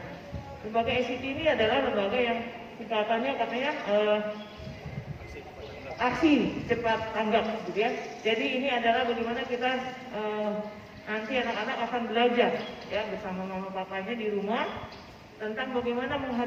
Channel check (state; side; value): identical; both; correlation 1.00